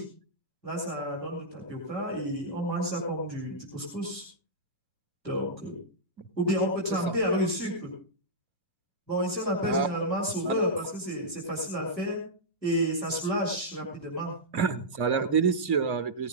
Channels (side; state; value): left; late; 1.4 ms